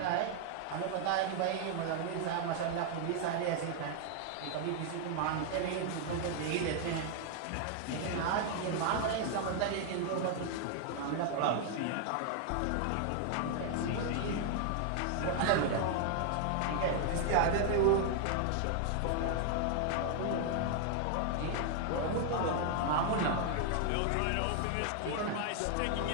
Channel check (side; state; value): both; different; correlation 0.00